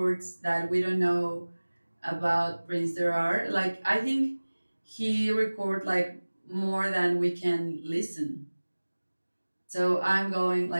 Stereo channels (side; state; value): both; inverted; correlation -1.00